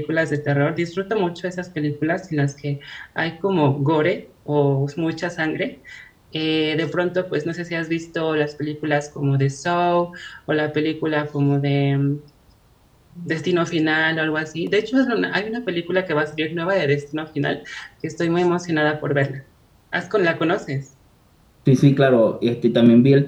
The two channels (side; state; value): both; identical; correlation 1.00